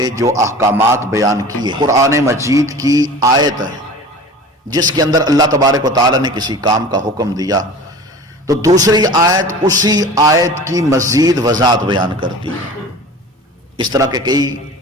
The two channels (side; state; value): both; normal; correlation 0.39